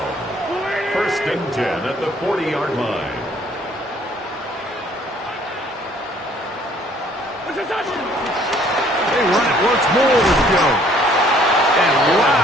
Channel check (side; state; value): both; normal; correlation 0.60